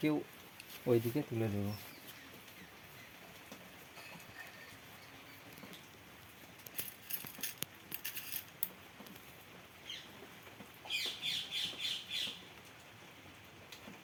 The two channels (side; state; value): both; identical; correlation 1.00